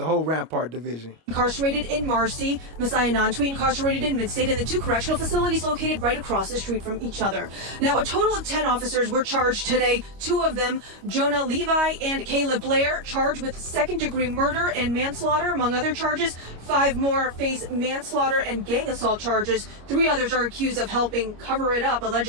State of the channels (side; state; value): left; late; 25 ms